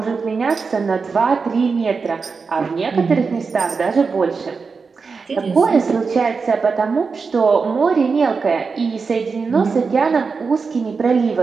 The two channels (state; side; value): quieter; left; 4.9 dB